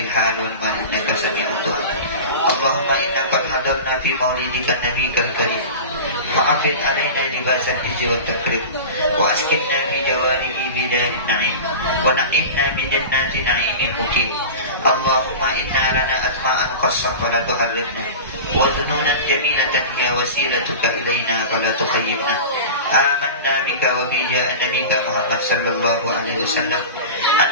hal wal mal innaka sami'ud du'a. Allahumma inna qad hadarna fi maulidika nabiyikal karim fa'afid alaina libasal hijri wat takrim wa askinna fi jawarihi bidayatin na'im wa na'imna min jannati na'imil mukim. Allahumma inna lana asma'an qassah wa la tuharrimna wa dhununan jamilatan ya wasilatuka ilayna wa la tukhayyibna. Amanna bika wa bi ja'a nabika Muhammad sallallahu alaihi wasallam an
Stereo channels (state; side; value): inverted; both; correlation -0.31